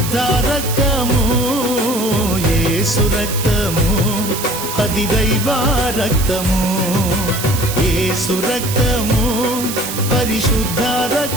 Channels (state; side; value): noise; right; hiss, 6 dB below the sound